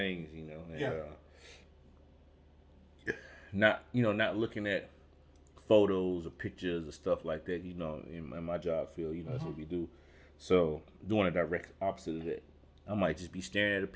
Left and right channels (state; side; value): identical; both; correlation 1.00